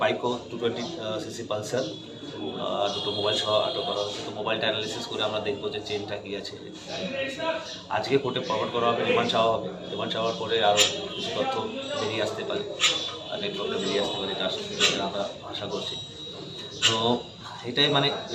বাইকও 220cc পালসার, দুটো মোবাইল সহ আটক করা হয়েছে। তো মোবাইলটা অ্যানালিসিস করে আমরা দেখবো যে চেনটা কী আছে। আজকে কোর্টে ফরওয়ার্ড করা হবে, রিমান্ড চাওয়া হবে। রিমান্ড চাওয়ার পরে আরও কিছু তথ্য বেরিয়ে আসতে পারে, নেটওয়ার্কটা বেরিয়ে আসতে পারে, এটা আমরা আশা করছি। তো এটাই মানে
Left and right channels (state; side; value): identical; both; correlation 1.00